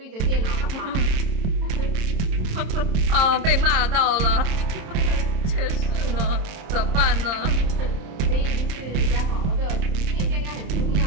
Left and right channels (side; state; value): left; late; 26 ms